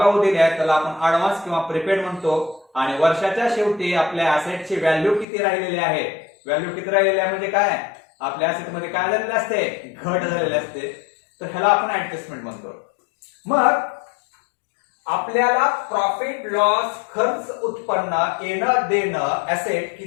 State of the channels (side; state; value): right; drops out; at 5.2 s